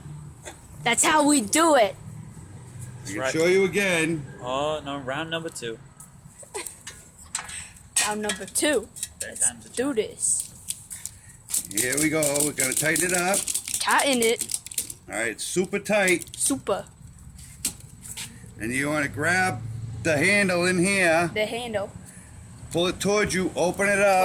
That's how we do it. I can show you again. Oh, no, round number 2. Round number 2. Let's do this. Here we go. We're going to tighten it up. Tighten it. All right, it's super tight. Super. And you want to grab the handle in here, The handle. pull it towards you, open it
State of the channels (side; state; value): both; identical; correlation 1.00